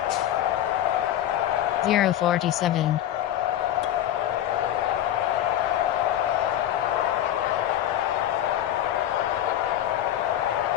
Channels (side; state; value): right; quieter; 11.9 dB